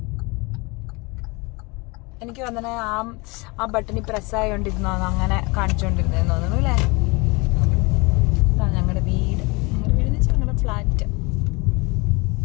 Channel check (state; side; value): quieter; right; 26.7 dB